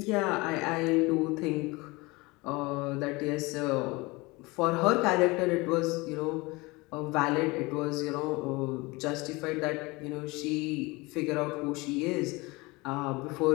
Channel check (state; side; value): quieter; right; 23.9 dB